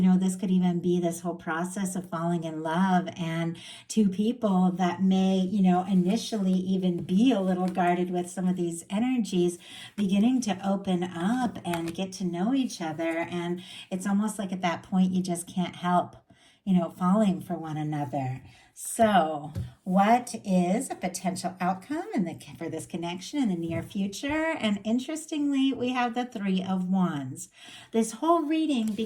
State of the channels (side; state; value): both; identical; correlation 1.00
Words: could even be this whole process of falling in love, and two people that may, initially even be a little guarded with some of these energies, beginning to open up and get to know each other. And it's almost like at that point, you just can't help, falling for one another. So, what is a potential outcome for this connection in the near future? And interestingly, we have the Three of Wands. This whole reading